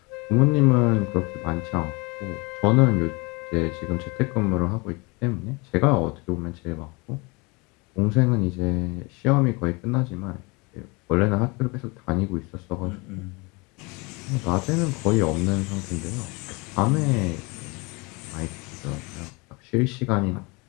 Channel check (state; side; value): quieter; right; 27.3 dB